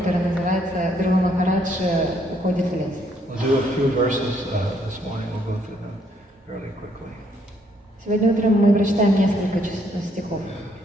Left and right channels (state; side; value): normal; both; correlation 0.69